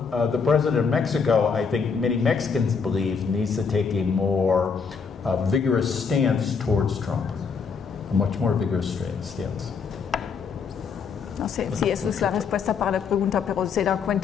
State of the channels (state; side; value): quieter; right; 5.7 dB